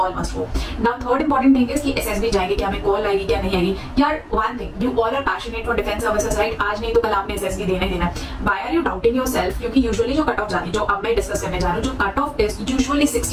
must go. Now third important thing is कि एसएसबी जाएंगे, क्या हमें कॉल आएगी क्या नहीं आएगी. यार one thing, you all are passionate for defence services right. आज नहीं तो कल आपने एसएसबी देना ही देना. Why are you doubting yourself? क्योंकि यूजुअली जो कट ऑफ जाती है, जो अब मैं डिस्कस करने जा रहा हूँ, जो कट ऑफ इज यूजुअली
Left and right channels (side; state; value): both; identical; correlation 1.00